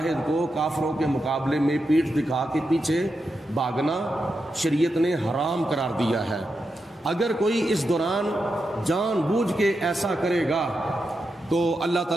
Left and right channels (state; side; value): normal; both; correlation 0.87